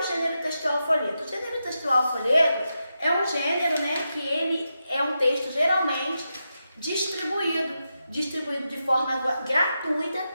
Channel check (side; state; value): both; inverted; correlation -0.88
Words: gênero textual folheto? O gênero textual folheto é um gênero, né, que ele é um texto geralmente distribuído de forma gratuita